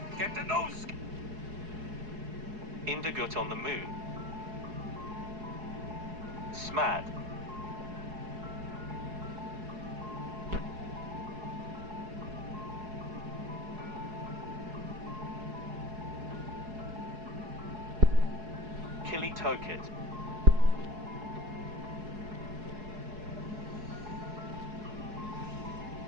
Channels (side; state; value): left; late; 4.7 ms